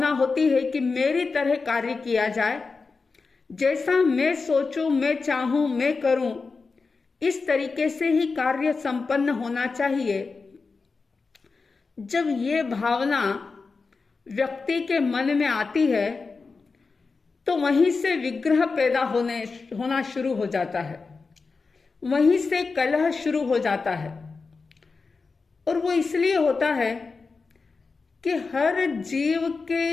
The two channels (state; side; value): quieter; right; 4.4 dB